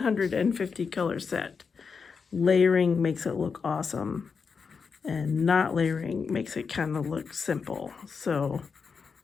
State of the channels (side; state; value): right; quieter; 5.5 dB